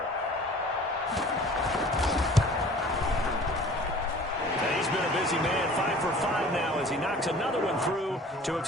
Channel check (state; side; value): normal; both; correlation 0.47